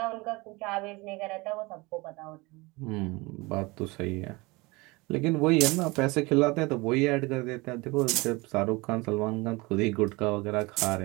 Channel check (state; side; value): quieter; left; 24.1 dB